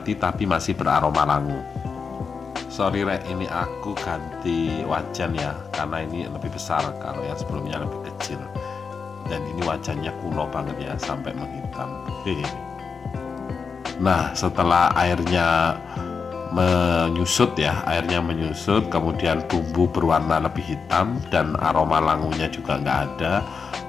tapi masih beraroma langu. Sorry Rek, ini aku ganti wajan ya, karena ini lebih besar, kalau yang sebelumnya lebih kecil. Dan ini wajannya kuno banget ya, sampai menghitam. Nah, setelah airnya menyusut ya, kemudian bumbu berwarna lebih hitam dan aroma langunya juga nggak ada,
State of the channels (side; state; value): right; quieter; 5.5 dB